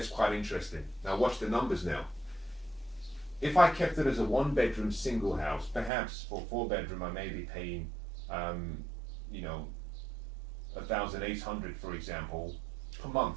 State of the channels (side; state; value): left; drops out; at 5.9 s